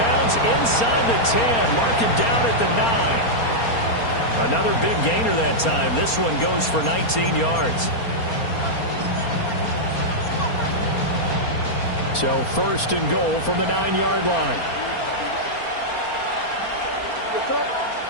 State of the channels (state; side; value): late; right; 4.3 ms